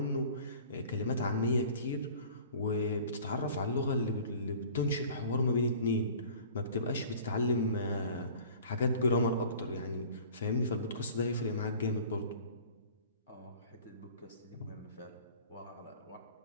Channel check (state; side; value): inverted; both; correlation -0.46